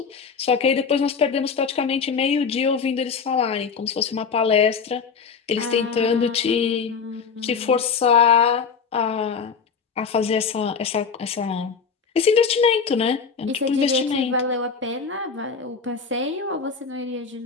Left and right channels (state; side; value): quieter; right; 5.8 dB